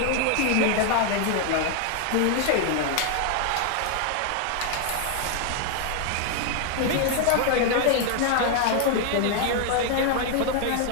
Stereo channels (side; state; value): both; different; correlation 0.00